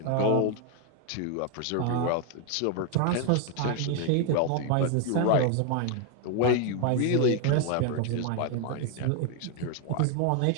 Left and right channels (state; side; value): different; both; correlation 0.01